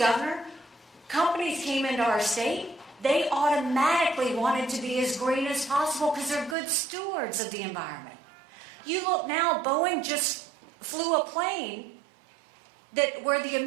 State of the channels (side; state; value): left; drops out; at 6.6 s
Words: companies came into our state, they automatically wanted to be as green as possible because they're good stewards of the environment. You look now, Boeing just flew a plane where the